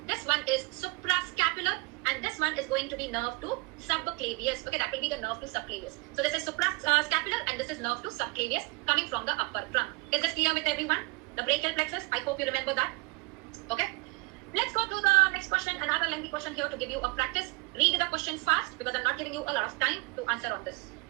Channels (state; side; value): quieter; left; 26.5 dB